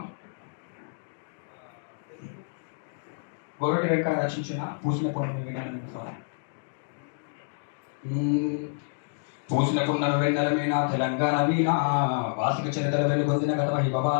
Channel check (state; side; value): silent; right; digital silence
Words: గోరటి వెంకట రచించిన పూసిన పొన్ను వినాలని సాంగ్. పూసిన పున్నర వెన్నెల మీనా తెలంగాణ వీణా వాసిక చరితల వెలుగొందిన గత